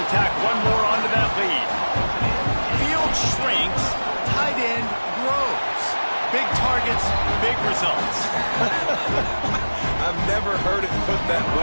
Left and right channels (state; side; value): inverted; both; correlation -1.00